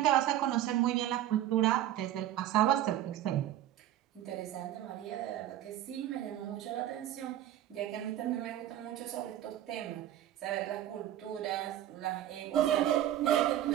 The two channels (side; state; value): left; quieter; 12.4 dB